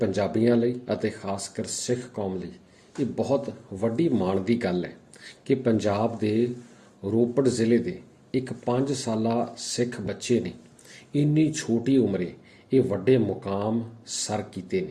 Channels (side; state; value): both; identical; correlation 1.00